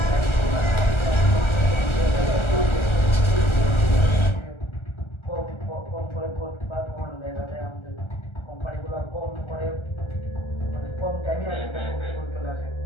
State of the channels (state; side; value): late; right; 1.3 ms